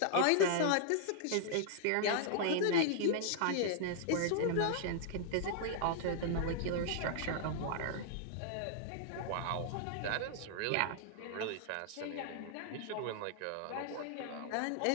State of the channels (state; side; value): different; both; correlation -0.01